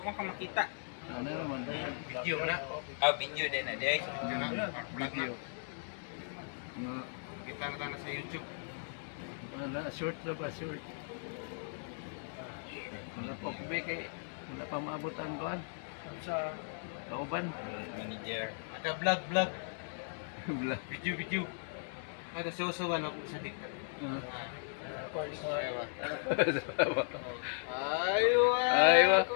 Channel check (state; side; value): silent; right; digital silence